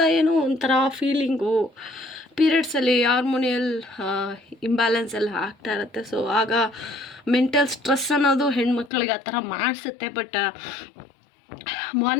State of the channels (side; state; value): right; drops out; at 8.9 s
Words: ಏನೋ ಒಂಥರ ಫೀಲಿಂಗು. ಪೀರಿಯಡ್ಸಲ್ಲಿ ಹಾರ್ಮೋನಿಯಲ್ ಇಂಬ್ಯಾಲೆನ್ಸ್ ಎಲ್ಲ ಆಗ್ತಾ ಇರುತ್ತೆ. ಸೊ ಆಗ ಮೆಂಟಲ್ ಸ್ಟ್ರೆಸ್ ಅನ್ನೋದು ಹೆಣ್ಮಕ್ಳಿಗೆ ಆ ಥರ ಮಾಡಿಸುತ್ತೆ. ಬಟ್